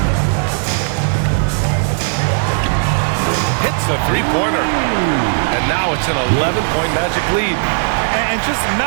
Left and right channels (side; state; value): left; silent; 69 dB below the other